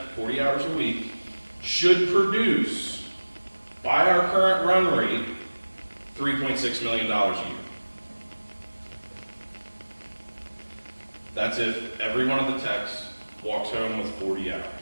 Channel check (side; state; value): both; inverted; correlation -1.00